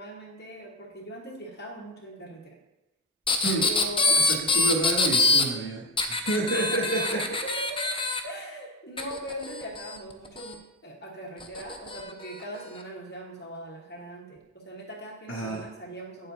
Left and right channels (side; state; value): both; normal; correlation 0.18